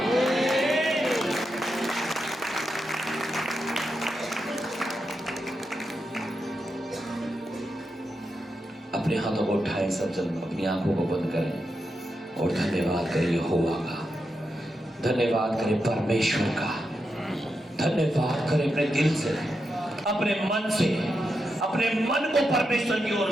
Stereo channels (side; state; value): both; normal; correlation 0.86